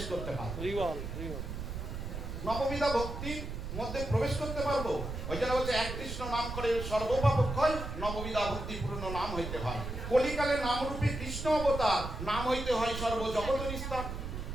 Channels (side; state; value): right; noise; rumble, 6 dB below the sound